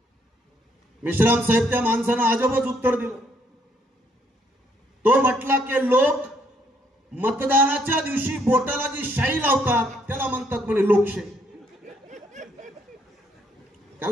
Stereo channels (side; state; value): both; normal; correlation 0.70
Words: मेश्राम साहेब त्या माणसानं अजबच उत्तर दिलं. तो म्हटला की लोक मतदानाच्या दिवशी बोटाला जी शाई लावतात त्याला म्हणतात म्हणे लोकशाही.